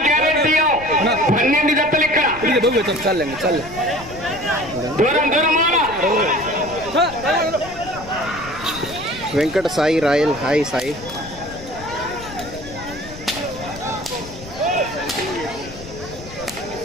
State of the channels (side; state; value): left; noise; rumble, 16 dB below the sound